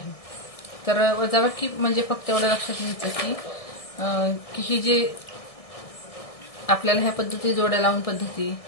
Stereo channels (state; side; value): late; right; 1.6 ms